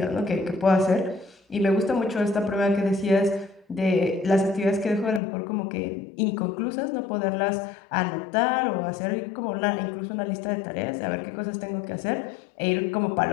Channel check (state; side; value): drops out; right; at 5.2 s